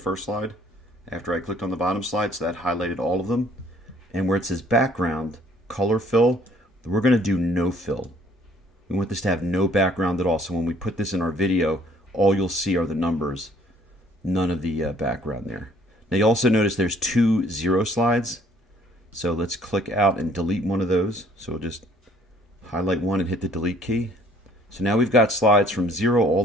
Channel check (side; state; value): both; normal; correlation 0.59